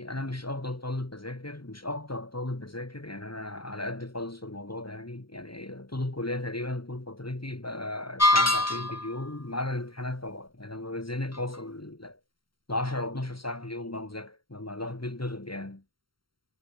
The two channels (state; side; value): late; right; 0.73 ms